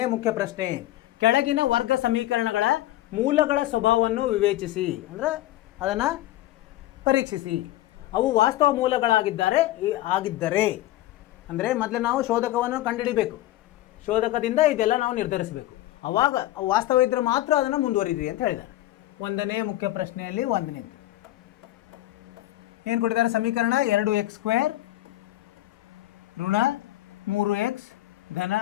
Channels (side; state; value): right; quieter; 15.5 dB